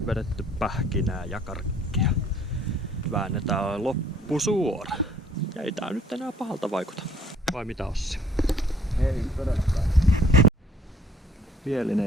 vedetty pähkinää ja karkkia. Väännetään loppusuora. Ja ei tää nyt enää pahalta vaikuta. Vai mitä, Ossi? Ei todellakaan.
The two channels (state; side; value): normal; both; correlation 0.60